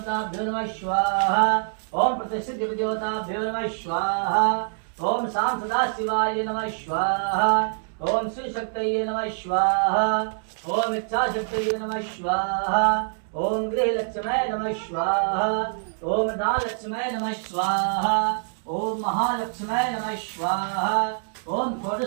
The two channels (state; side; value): silent; left; digital silence